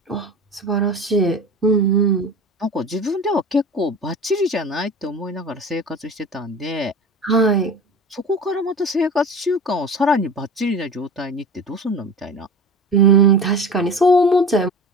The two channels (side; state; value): both; normal; correlation 0.36